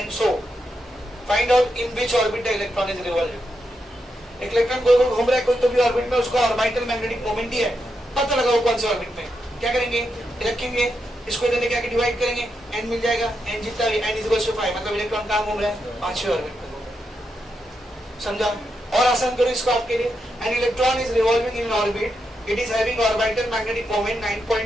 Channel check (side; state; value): both; normal; correlation 0.84